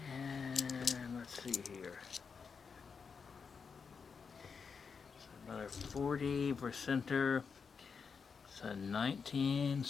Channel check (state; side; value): quieter; right; 5.7 dB